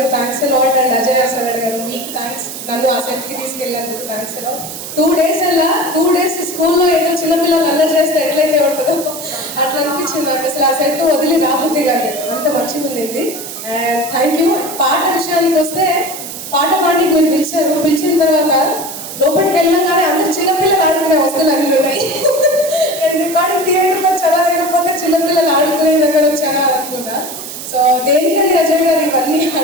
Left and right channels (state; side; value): noise; right; hiss, 10 dB below the sound